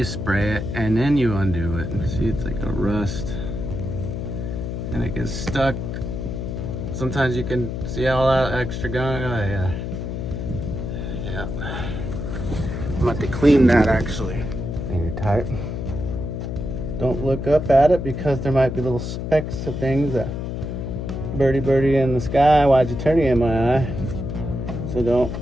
spray it, and then you undo it. See, it's like a rust, and it gets stuck. Sometimes you can see all that extra gunk. Oh yeah, yeah. I'm about to clean that actually. Finger tight. Don't look up at it because there might be little specks of things that birdie in the sky. Why'd you turn it in my eye? So don't,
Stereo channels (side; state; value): left; noise; hum, 4 dB below the sound